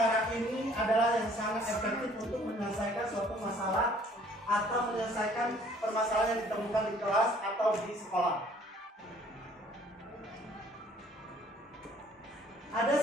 ini adalah yang sangat efektif untuk menyelesaikan suatu masalah atau menyelesaikan permasalahan yang ditemukan di kelas atau di sekolah. Ada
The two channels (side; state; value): both; normal; correlation 0.57